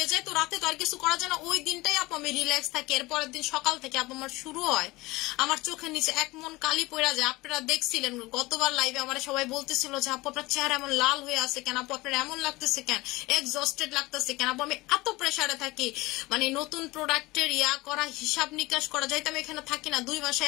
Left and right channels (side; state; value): right; quieter; 21.1 dB